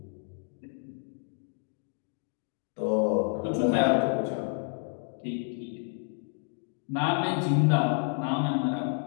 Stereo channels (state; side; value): silent; right; 58 dB below the other